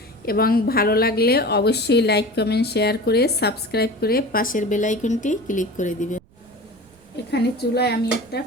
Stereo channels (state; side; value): noise; right; rumble, 30 dB below the sound